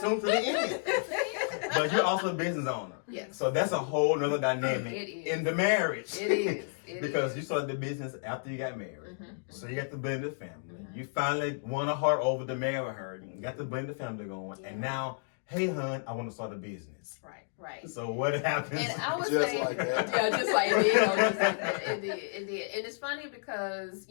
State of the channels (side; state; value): right; silent; digital silence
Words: to the end. But you're also a business owner. Yes. So that's a whole nother dynamic It is. in the marriage. It is. Because you started the business after you got married. So you got the blended family. You finally won a heart over to marry her. You got the blended family going. And now, hey, hon, I want to start a business. Right. So what happens? And I would Just say, like that. yeah, just like it did. Just like that. It did. And it's funny because